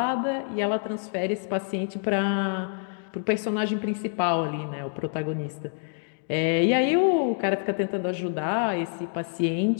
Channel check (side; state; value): right; silent; digital silence